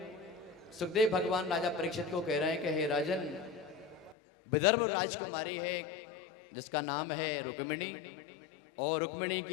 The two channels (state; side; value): drops out; right; at 4.2 s